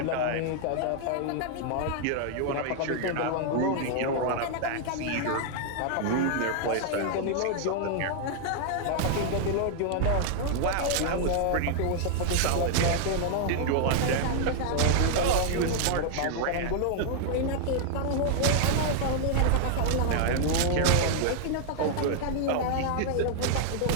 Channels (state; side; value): different; both; correlation 0.00